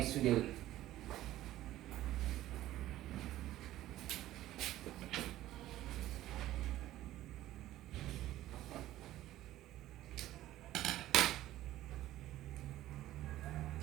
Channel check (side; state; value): left; quieter; 14.6 dB